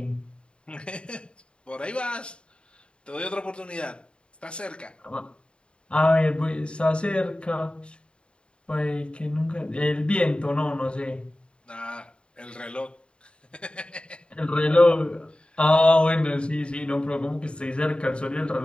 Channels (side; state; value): right; late; 0.054 ms